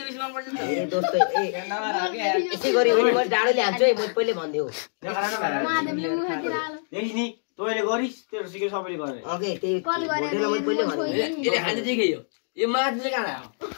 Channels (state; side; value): silent; right; digital silence